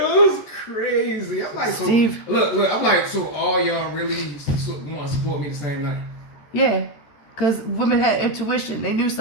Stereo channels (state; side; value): late; right; 14 ms